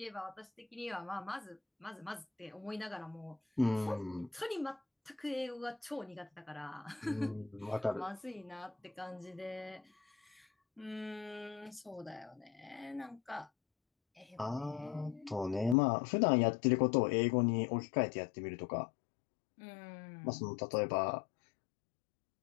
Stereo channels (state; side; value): drops out; right; at 15.8 s